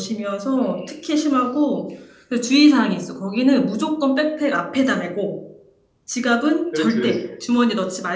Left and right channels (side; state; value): both; identical; correlation 1.00